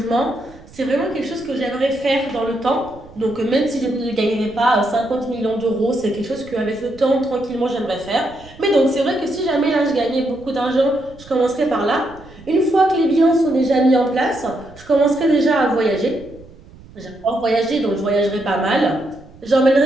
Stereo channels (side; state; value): right; noise; rumble, 22 dB below the sound